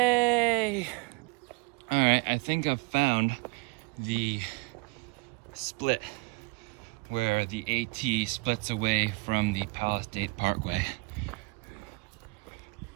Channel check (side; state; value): left; quieter; 28.0 dB